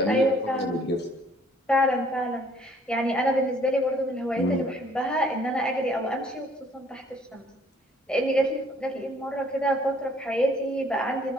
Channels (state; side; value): normal; both; correlation 0.60